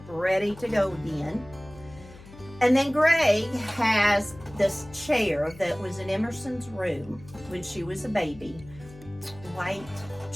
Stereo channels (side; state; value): left; noise; hum, 19 dB below the sound